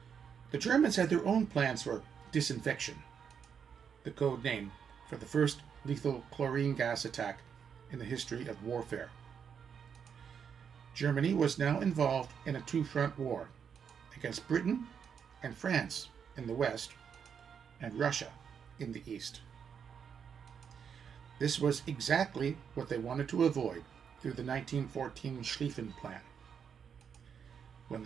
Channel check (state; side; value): quieter; left; 7.2 dB